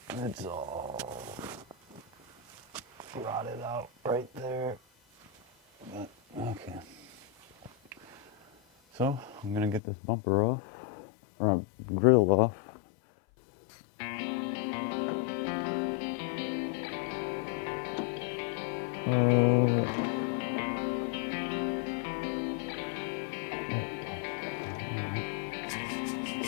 It's all rotted out right there. But, okay. So I'm gonna get this bumper off, or grill off. Oh, there it goes.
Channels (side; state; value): right; drops out; at 9.8 s